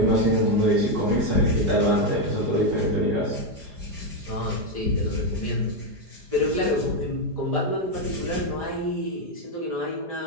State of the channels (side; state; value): left; late; 4.9 ms